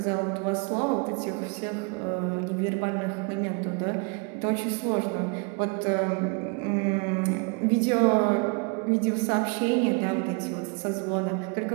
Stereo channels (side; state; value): left; quieter; 32.8 dB